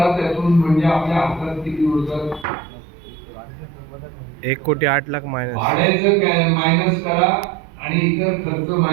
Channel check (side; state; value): left; drops out; at 2.5 s